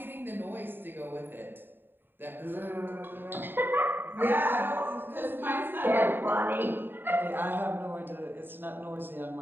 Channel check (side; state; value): left; late; 0.096 ms